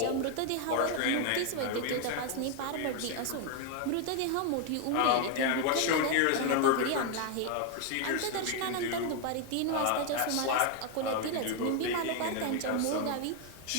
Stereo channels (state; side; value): different; both; correlation 0.01